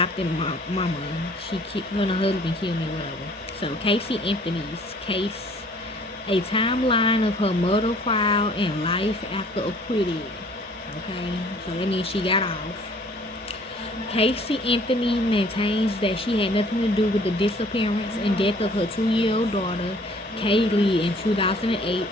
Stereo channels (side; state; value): both; normal; correlation 0.55